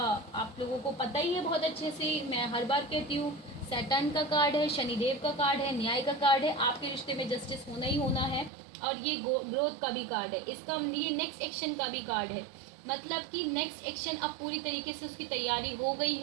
लोगों को पता ही है बहुत अच्छे से, मैं हर बार कहती हूँ, सैटर्न का कार्ड है, शनिदेव का कार्ड है, न्याय का कार्ड है। आपके रिश्ते में जस्टिस होना ही होना है, और ये ग्रोथ का भी कार्ड है। इसका ये नेक्स्ट एक्शन का भी कार्ड है, मतलब कि नेक्स्ट एक्शन अब पूरी तरीके से उसकी तैयारी हो गई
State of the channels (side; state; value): left; drops out; at 8.5 s